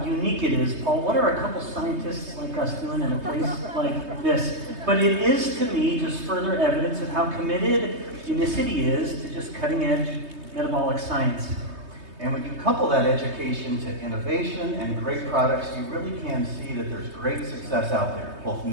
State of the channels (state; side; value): late; left; 3.2 ms